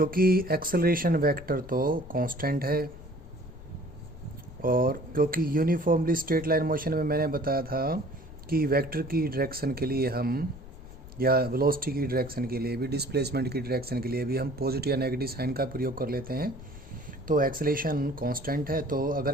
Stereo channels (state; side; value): noise; left; rumble, 16 dB below the sound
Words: एक्सेलरेशन वेक्टर तो कांस्टेंट है और क्योंकि यूनिफॉर्मली स्ट्रेट लाइन मोशन में मैंने बताया था कि वेक्टर की डायरेक्शन के लिए हम या वेलोसिटी की डायरेक्शन के लिए भी डिस्प्लेसमेंट की डायरेक्शन के लिए भी हम पॉजिटिव या नेगेटिव साइन का प्रयोग कर लेते हैं। तो एक्सेलेरेशन कांस्टेंट है, तो